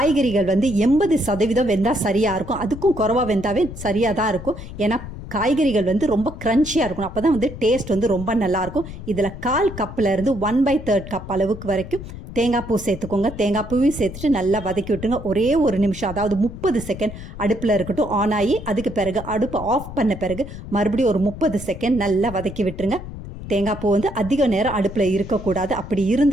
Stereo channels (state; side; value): noise; left; rumble, 11 dB below the sound